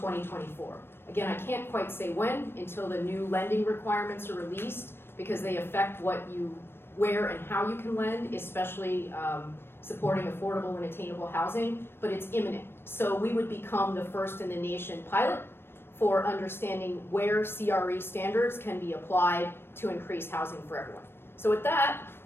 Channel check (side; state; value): right; late; 0.11 ms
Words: Again, I can't quite say when until the new lending requirements are released, because they affect where and how you can lend, especially supporting affordable and attainable housing, but it's imminent. So we would become the first in the nation pilot for understanding where CRE standards can be applied to increase housing for everyone. So with that,